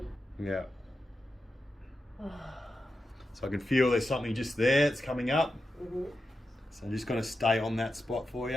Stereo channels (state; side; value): normal; both; correlation 0.90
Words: Yeah. So I can feel there's something just there, it's coming up. So I'm just going to stay on that spot for